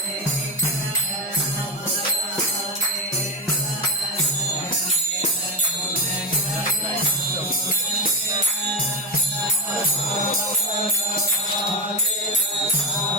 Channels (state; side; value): normal; both; correlation 0.14